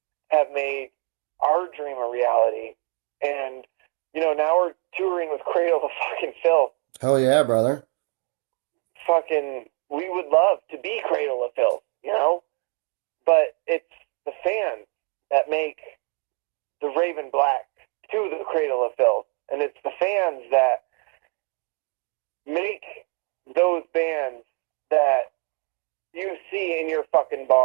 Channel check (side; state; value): left; quieter; 36.8 dB